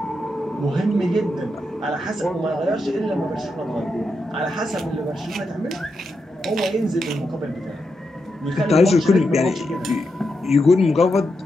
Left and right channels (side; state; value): both; normal; correlation 0.85